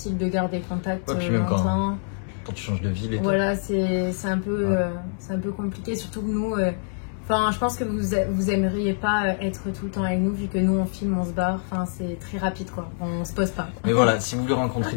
de garder contact longtemps. Quand tu changes de ville et tout. Voilà, c'est un peu compliqué, surtout que nous, je pense que vous aimeriez pas être tout le temps avec nous, vu que nous on filme, on se barre, c'est très rapide quoi, on se pose pas. Mais voilà, si vous voulez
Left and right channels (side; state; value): right; silent; digital silence